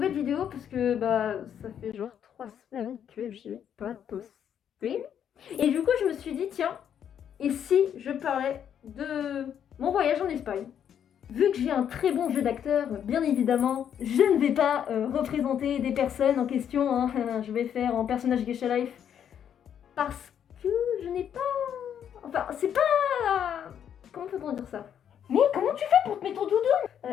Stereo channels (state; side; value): quieter; right; 9.0 dB